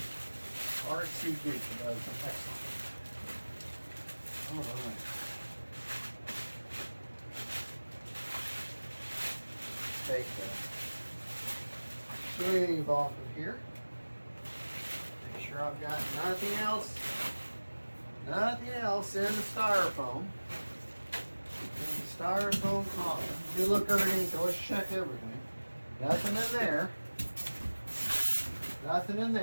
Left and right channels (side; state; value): both; inverted; correlation -1.00